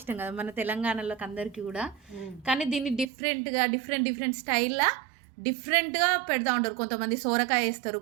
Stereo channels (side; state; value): left; drops out; at 3.1 s